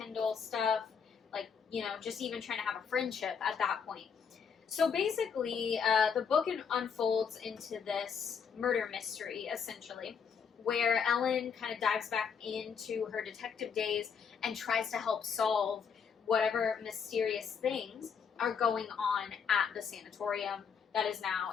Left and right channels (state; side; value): quieter; right; 6.6 dB